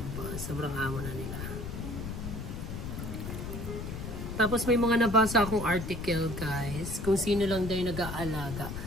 Sobrang amo na nila. Tapos may mga nabasa akong article guys, kung sino lang daw yung nag-aalaga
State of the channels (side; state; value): left; noise; rumble, 6 dB below the sound